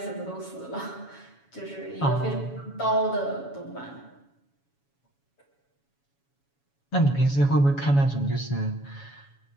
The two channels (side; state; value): right; late; 7.2 ms